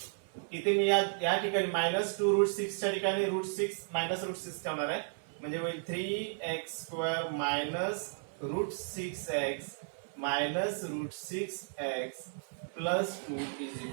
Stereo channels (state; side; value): silent; left; 55 dB below the other